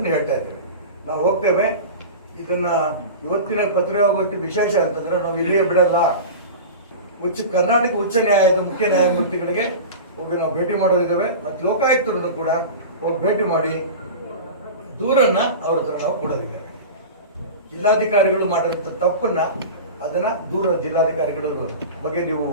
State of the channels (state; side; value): inverted; both; correlation -0.31